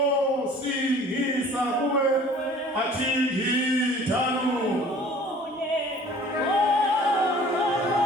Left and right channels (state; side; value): normal; both; correlation 0.49